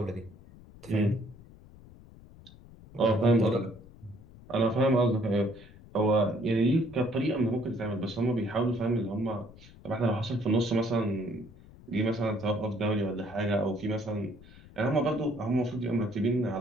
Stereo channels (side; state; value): left; noise; rumble, 21 dB below the sound